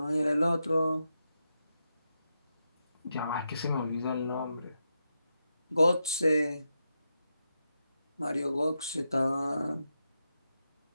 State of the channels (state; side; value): inverted; both; correlation -0.86